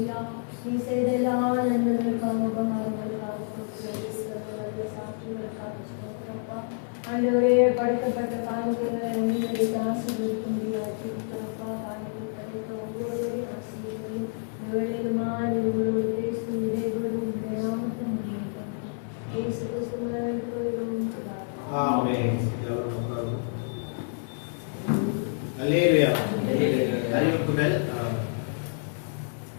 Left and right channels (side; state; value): right; silent; digital silence